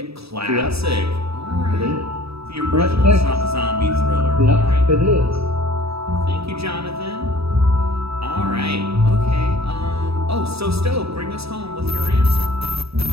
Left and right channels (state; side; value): late; left; 0.77 ms